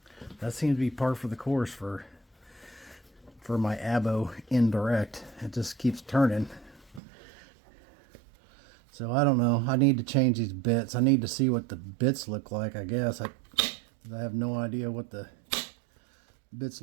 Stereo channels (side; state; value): left; drops out; at 7.0 s